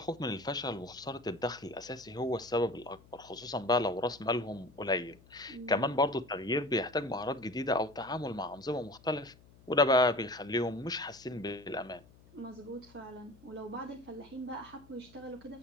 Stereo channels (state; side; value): noise; left; hum, 25 dB below the sound